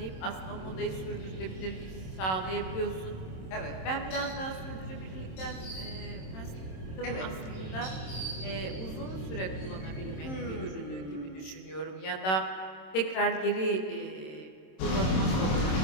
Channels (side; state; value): right; late; 27 ms